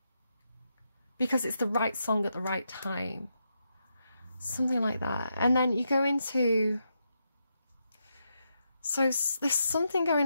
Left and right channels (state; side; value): inverted; both; correlation -0.84